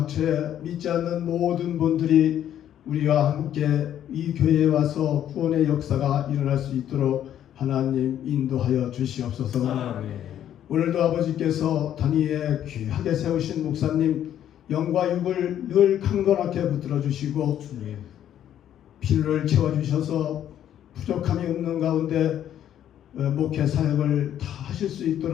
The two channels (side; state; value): right; quieter; 10.7 dB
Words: 믿지 않는 모든 분들이 우리와 함께 이 교회에 와서 구원의 역사가 일어날 수 있도록 하나님 인도하여 주시옵소서. 아멘. 오늘도 아버지께서 단위에 귀하게 세우신 목사님 영과 육을 늘 강건하게 붙들어 주시고 주님. 필요를 채워주셔서 부족함이 없는 가운데 목회 사역을 다 하실 수